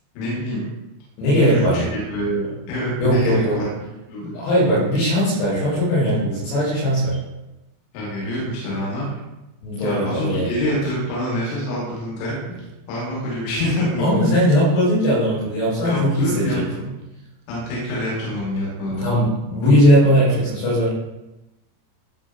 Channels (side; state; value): right; late; 35 ms